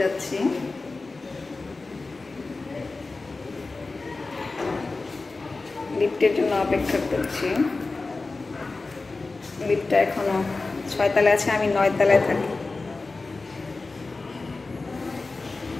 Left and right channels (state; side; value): quieter; right; 3.6 dB